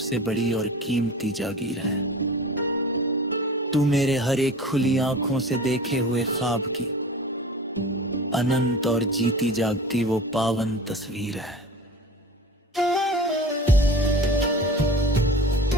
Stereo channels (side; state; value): both; normal; correlation 0.37